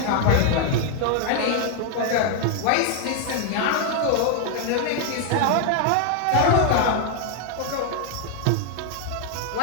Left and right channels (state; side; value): different; both; correlation 0.00